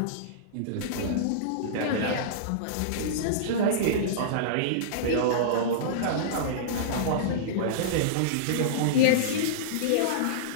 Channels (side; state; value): both; different; correlation -0.03